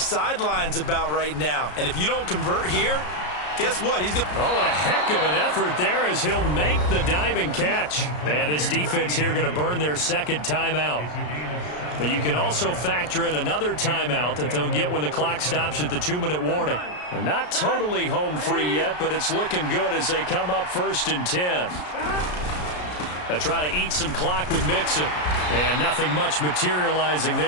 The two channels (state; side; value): late; right; 33 ms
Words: about right now. And if you don't convert here, guess what? He's going. Oh, what a heck of an effort there as he'll make the diving catch. And his defense here going to burn their 2nd timeout. But you can also factor in another timeout that they'll get when the clock stops at the 2-minute warning. They're not totally home free yet, but it's looking good as they come up 1st and 10. They try to eat some clock with Mixon. And nothing much materializing